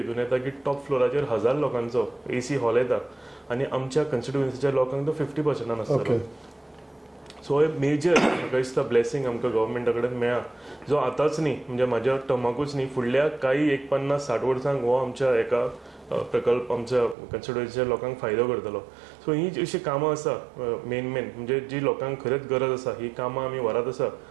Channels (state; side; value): drops out; left; at 17.2 s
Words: येता की टॉप फ्लोराचेर 1,000 लोकांचो AC हॉल येता आनी आमच्या कन्स्टिट्युएन्सीच्या लोकांक तो 50% आसतलो. सो हे मेजर म्हाका दिसता ब्लेसिंग आमकां गव्हर्मेंटा कडेन मेळ्ळा जो आतांच न्ही म्हणजे म्हाज्या टर्माकूच न्ही फुडल्या काही 50-60 वर्सांक हो आमच्या एका प्रकल्प आमच्या कन्स्टिट्युएन्सीच्या लोकांक फायदो करतलो. सो ही अशी कामां आसा मेन म्हणजे जी लोकांक खरेंच गरज आसा ही कामां आमी व्हरात आसा